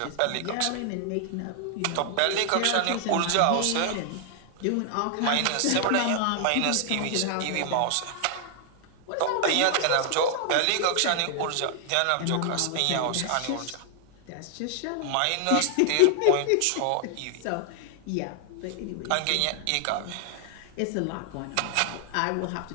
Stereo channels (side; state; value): both; different; correlation 0.00